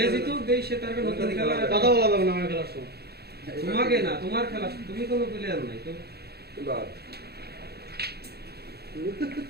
জিতু দেই সে তার নতুন খেলা কথা বলা যাবে না আমার খেলার সময় তোমাকে না তোমার খেলা তুমি কোনো প্লেয়ার নাই তো বাদ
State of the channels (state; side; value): late; left; 0.47 ms